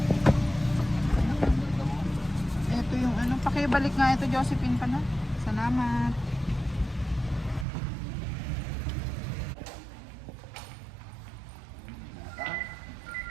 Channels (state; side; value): drops out; left; at 7.7 s